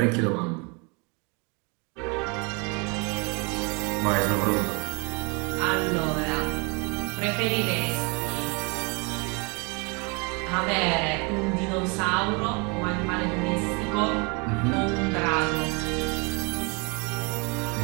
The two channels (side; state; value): left; quieter; 30.6 dB